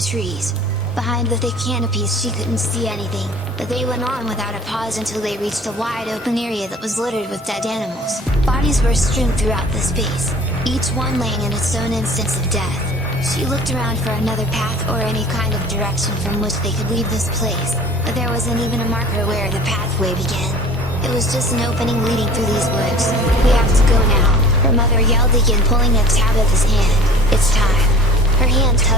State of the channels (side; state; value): both; normal; correlation 0.45